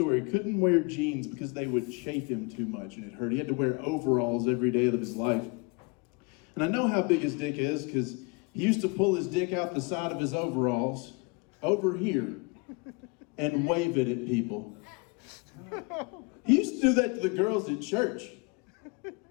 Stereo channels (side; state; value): right; quieter; 30.0 dB